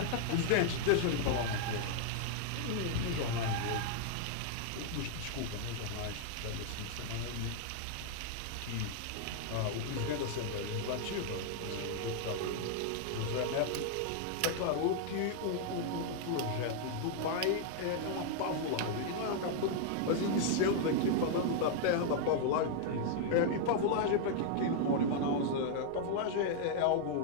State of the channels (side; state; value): both; different; correlation 0.00